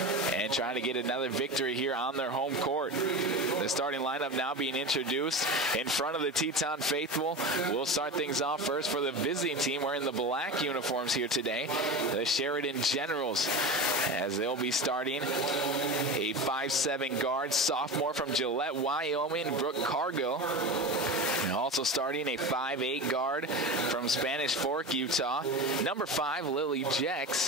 trying to get another victory here on their home court. The starting lineup now being introduced in front of the Teton faithful. We'll start things off first for the visiting team wearing the black uniforms here today. The Sheridan Generals, as they'll be starting a 5'7" guard, sophomore from Gillette, Wyoming, Brooke Cargill. And also starting a 5'8" guard from Spanish Fork, Utah, number 5, Lily Jex.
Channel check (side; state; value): both; normal; correlation 0.26